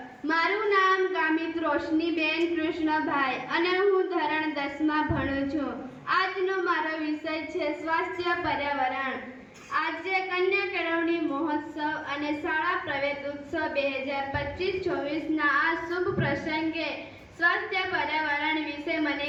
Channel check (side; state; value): both; identical; correlation 1.00